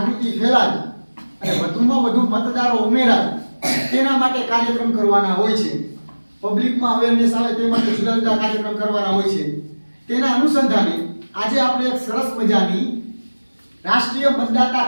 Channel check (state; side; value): inverted; both; correlation -1.00